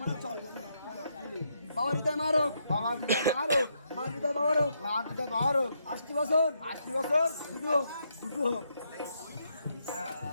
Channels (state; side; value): inverted; both; correlation -0.77